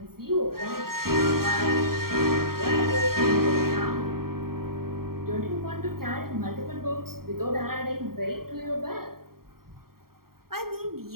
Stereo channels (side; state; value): left; late; 0.93 ms